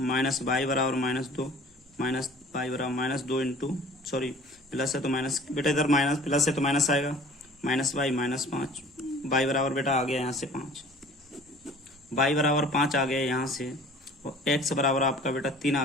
वाई बराबर -2, माइनस वाई बराबर -2 इंटू, सॉरी प्लस है तो माइनस, बेटा इधर माइनस प्लस है तो माइनस आएगा, माइनस वाई -5, वाई बराबर बेटा आ गया यहाँ से 5, वाई बराबर 5 आ गया यहाँ से, और एक्स बराबर आपका बेटा 3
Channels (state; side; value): normal; both; correlation 0.48